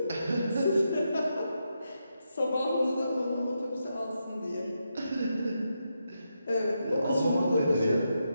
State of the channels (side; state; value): both; inverted; correlation -0.84